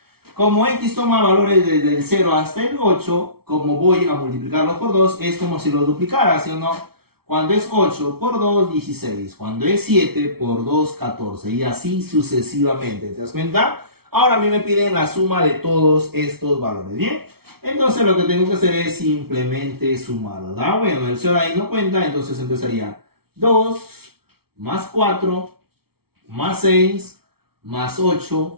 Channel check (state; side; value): late; left; 0.95 ms